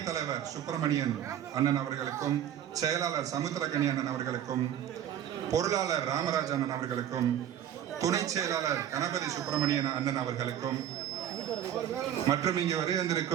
தலைவர் சுப்பிரமணியன் அண்ணன் அவர்களுக்கும் செயலாளர் சமுத்திரகனி அண்ணன் அவர்களுக்கும் பொருளாளர் ராமராஜ் அண்ணன் அவர்களுக்கும் துணை செயலாளர் கணபதி சுப்பிரமணியன் அண்ணன் அவர்களுக்கும் மற்றும் இங்கே வருகை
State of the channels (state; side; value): quieter; left; 10.4 dB